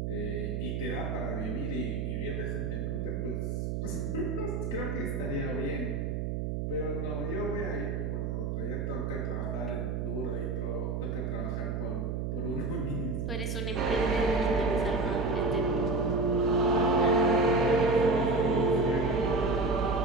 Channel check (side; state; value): right; noise; hum, 1 dB below the sound